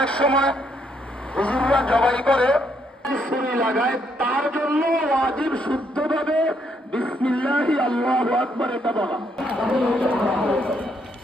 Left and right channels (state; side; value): normal; both; correlation 0.73